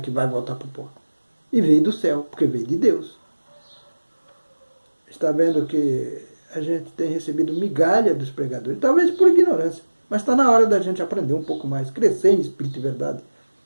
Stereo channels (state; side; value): inverted; both; correlation -1.00